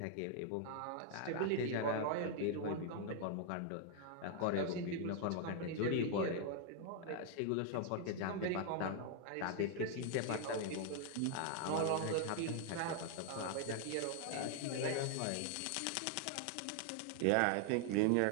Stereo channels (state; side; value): different; both; correlation 0.00